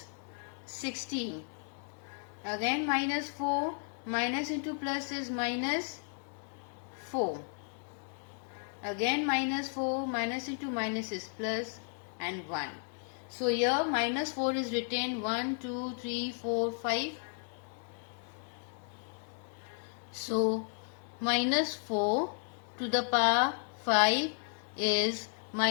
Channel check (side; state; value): right; silent; 55 dB below the other